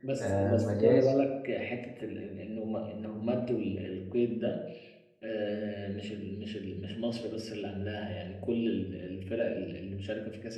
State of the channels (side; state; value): both; identical; correlation 1.00